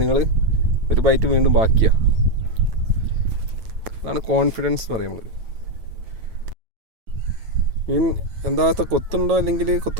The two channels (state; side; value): late; left; 9.1 ms